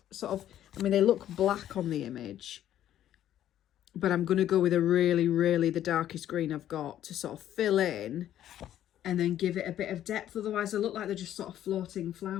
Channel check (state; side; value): quieter; right; 11.6 dB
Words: Sort of, I mean, they look black on the image, but I'm going to go with a really the darkest green I've got to sort of fill in and then give it a bit of depth. Otherwise, they look like they're just sort of floating